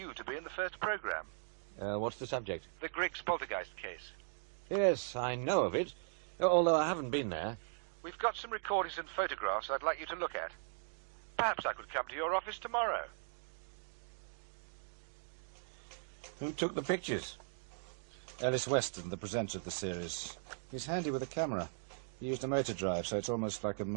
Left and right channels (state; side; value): silent; left; digital silence